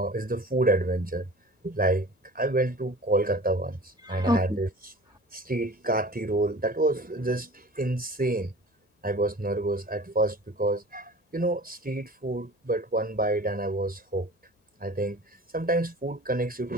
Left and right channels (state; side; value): normal; both; correlation 0.42